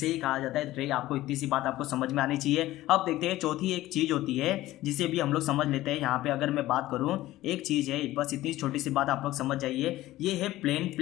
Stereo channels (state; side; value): quieter; right; 16.1 dB